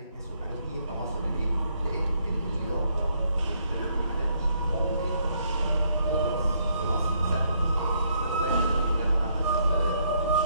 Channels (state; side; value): inverted; both; correlation -0.71